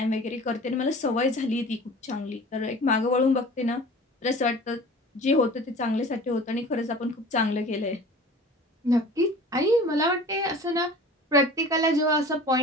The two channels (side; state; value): both; normal; correlation 0.42